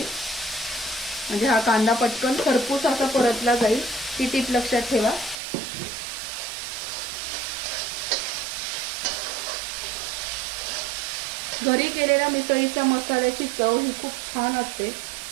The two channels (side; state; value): left; drops out; at 5.4 s